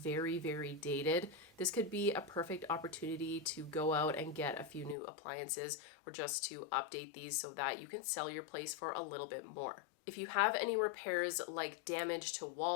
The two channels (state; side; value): drops out; right; at 5.0 s